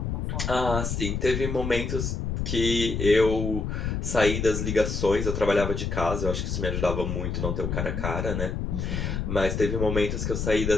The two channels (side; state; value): left; noise; rumble, 2 dB below the sound